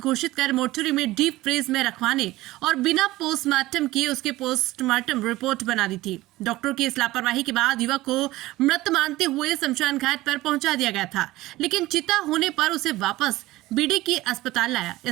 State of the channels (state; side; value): quieter; left; 17.8 dB